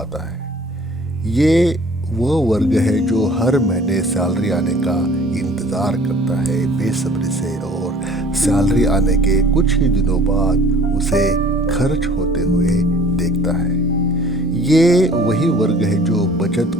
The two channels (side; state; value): both; normal; correlation 0.51